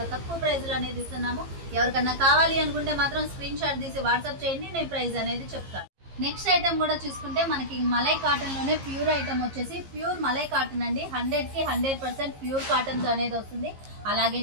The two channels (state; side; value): late; left; 15 ms